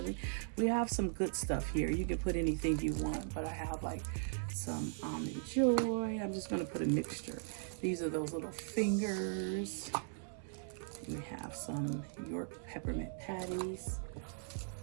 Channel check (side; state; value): left; silent; 52 dB below the other